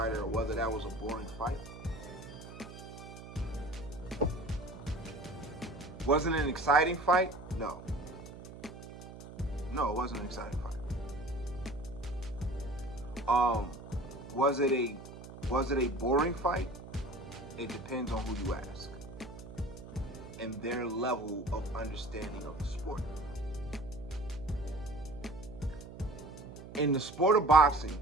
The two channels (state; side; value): noise; right; hum, 14 dB below the sound